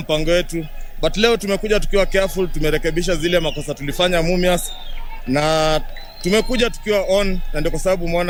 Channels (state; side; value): identical; both; correlation 1.00